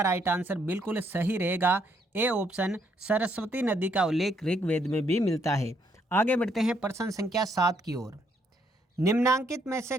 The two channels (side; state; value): both; normal; correlation 0.71